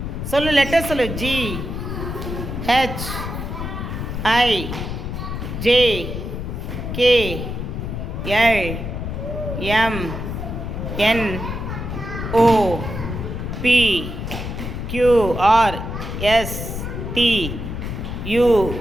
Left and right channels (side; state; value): left; noise; rumble, 5 dB below the sound